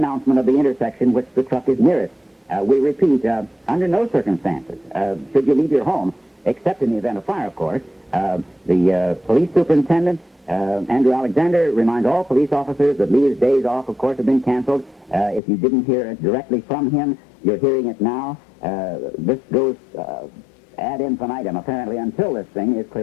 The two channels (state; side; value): drops out; right; at 15.4 s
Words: of the intersection which the truck is nearest. We repeat, under no circumstances should you leave your home, except in the event of fire, of course. The police superintendent, Andrew Alexander, reminds all police officers that Lee's days off, of course, have been canceled. If you didn't hear it directly from him, you're hearing it now. This goes ad infinitum, apparently, until this thing is